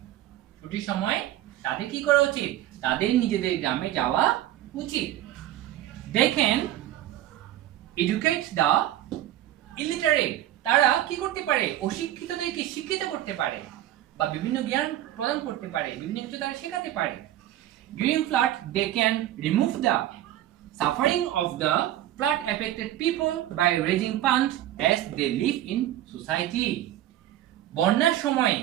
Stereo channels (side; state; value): left; quieter; 13.4 dB